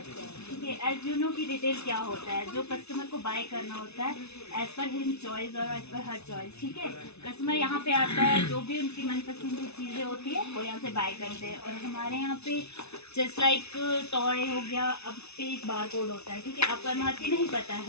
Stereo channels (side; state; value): right; late; 0.80 ms